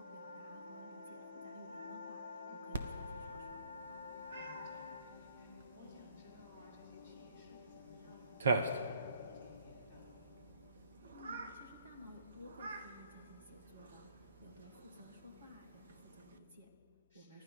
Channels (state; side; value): inverted; both; correlation -0.64